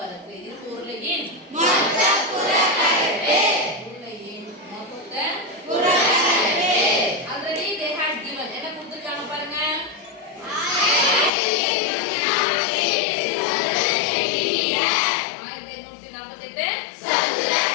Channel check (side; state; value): right; drops out; at 11.3 s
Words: இரும்பு உருளையின் மொத்த புறப்பரப்பு உருளையின் மொத்த புறப்பரப்பு ஆல்ரெடி they had given என்ன கொடுத்திருக்காங்க பாருங்க 1848 சதுர